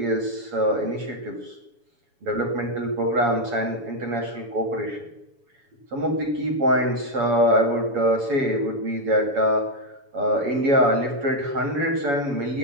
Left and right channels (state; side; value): late; left; 7.1 ms